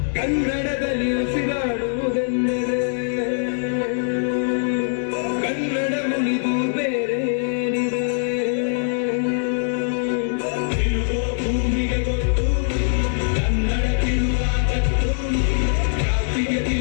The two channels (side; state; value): right; silent; digital silence